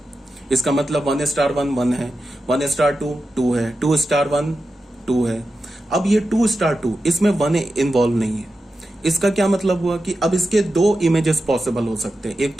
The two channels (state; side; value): normal; both; correlation 0.91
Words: इसका मतलब 1 स्टार 1 1 है, 1 स्टार 2 2 है, 2 स्टार 1 2 है। अब ये 2 स्टार 2 इसमें 1 इन्वॉल्व नहीं है। इसका क्या मतलब हुआ कि अब इसके 2 इमेजेस पॉसिबल हो सकते हैं, एक